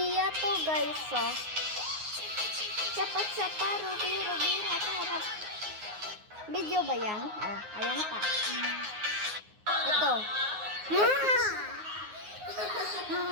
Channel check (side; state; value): left; late; 9.5 ms